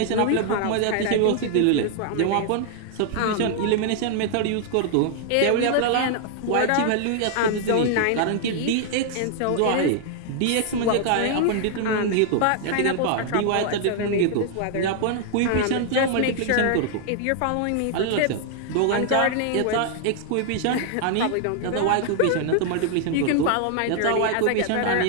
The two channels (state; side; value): different; both; correlation 0.00